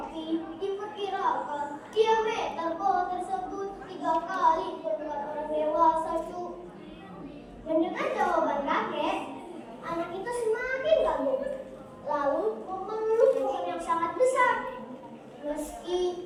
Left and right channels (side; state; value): both; identical; correlation 1.00